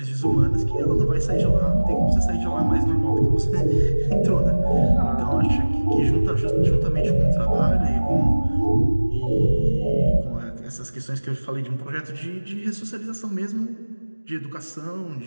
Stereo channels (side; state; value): both; inverted; correlation -1.00